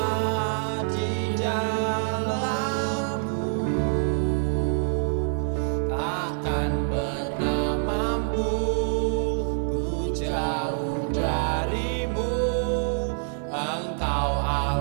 di dalammu, takkan pernah mampu ku jauh darimu. Engkau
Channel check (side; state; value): left; silent; digital silence